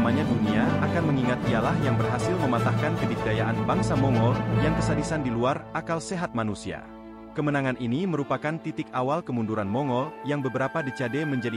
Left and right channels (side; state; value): both; identical; correlation 1.00